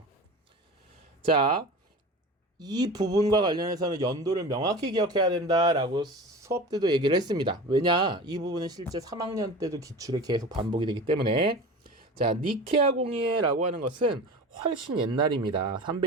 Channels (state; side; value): normal; both; correlation 0.34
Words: 자, 이 부분과 관련해서는 연도를 명확히 기억해야 된다라고 수업 때도 얘기를 했습니다. 왜냐? 이 부분은 실제 3학년 때도 기출에 계속 반복이 되기 때문에. 자, 니케아 공의회라고 하는 것은 훨씬 옛날입니다.